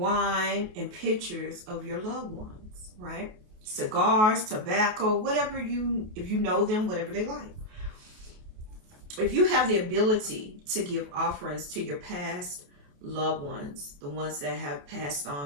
and pictures of your loved ones, right? Cigars, tobacco, whatever if you know them, whatever they like. If you have the ability to give offerings to your past loved ones, the ones that have passed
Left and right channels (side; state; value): left; late; 28 ms